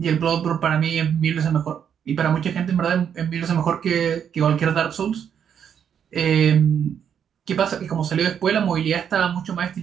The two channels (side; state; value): left; quieter; 8.2 dB